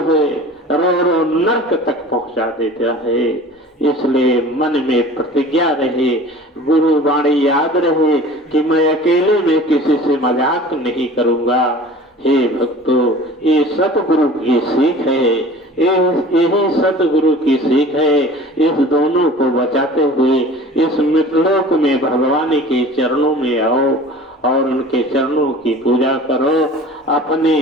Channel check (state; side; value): normal; both; correlation 0.42